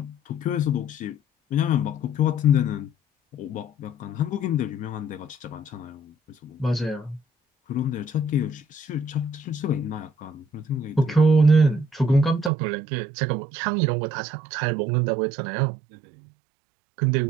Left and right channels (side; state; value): left; drops out; at 12.5 s